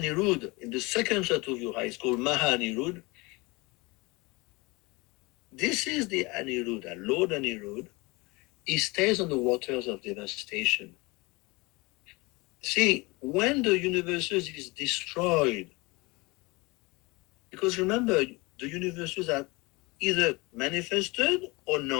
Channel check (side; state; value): right; quieter; 24.8 dB